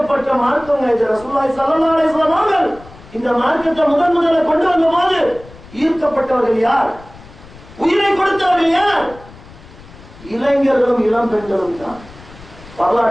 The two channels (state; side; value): noise; left; rumble, 21 dB below the sound